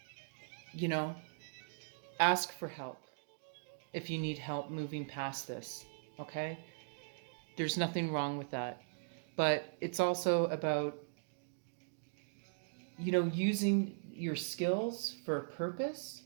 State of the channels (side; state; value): left; silent; digital silence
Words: Ask for help if you need help moving past this, okay? There's nothing wrong with that. But it's also about, using your skills for a purpose,